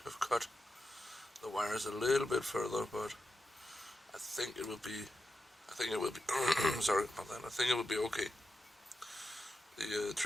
have cut the wires a little bit further, but I think it will be sorry about that. I think it will be okay. The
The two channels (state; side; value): normal; both; correlation 0.89